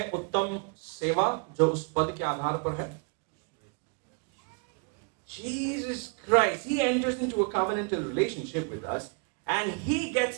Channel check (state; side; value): quieter; left; 35.2 dB